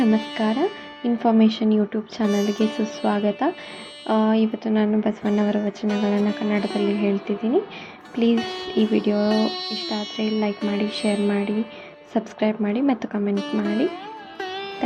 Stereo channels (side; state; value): both; identical; correlation 1.00